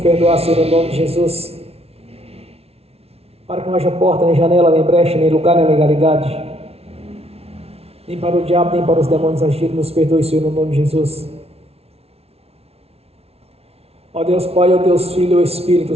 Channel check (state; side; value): late; left; 0.30 ms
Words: Senhor, no nome de Jesus, para que não haja porta, nem janela, nem brecha, nem lugar, nem legalidade, nem para o diabo, nem para os demônios agirem. Nos perdoe, Senhor, no nome de Jesus. Ó Deus Pai, ó Deus Filho, ó Espírito